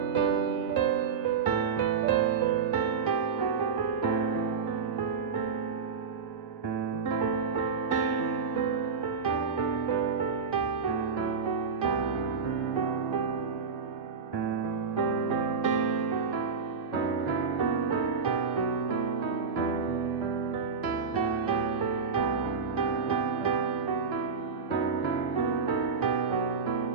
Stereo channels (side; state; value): left; quieter; 5.6 dB